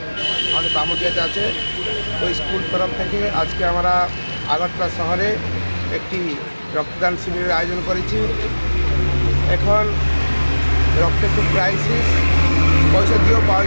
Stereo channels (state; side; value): inverted; both; correlation -1.00